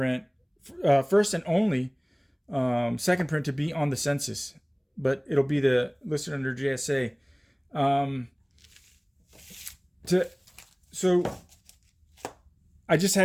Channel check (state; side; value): identical; both; correlation 1.00